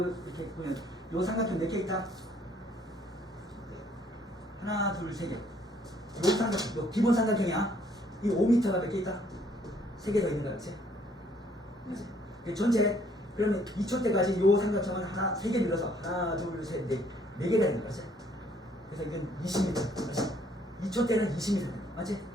이렇게 보면 요 삼각형 몇 개 있다? 하나, 둘, 세 개. 요 삼각형, 요 기본 삼각형이야. 이 5m가 몇 개 있다? 3개 더 있는 거야, 그렇지? 그렇지? 전체 그러면 2초 때까지 요 삼각형은 하나, 3개 늘어서 하나, 둘, 셋, 넷, 4개가 있는 거지. 그래서 이건 20m. 그렇지? 2초 때는 20m. 맞지?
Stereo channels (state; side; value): normal; both; correlation 0.64